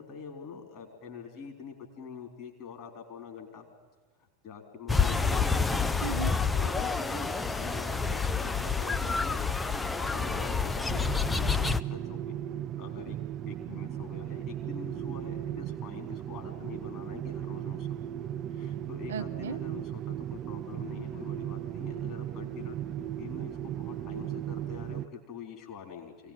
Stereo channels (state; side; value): normal; both; correlation 0.57